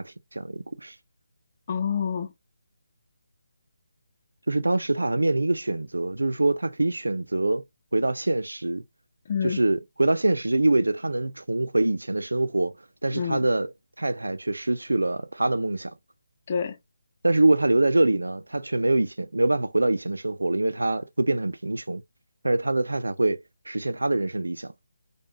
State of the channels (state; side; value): inverted; both; correlation -0.97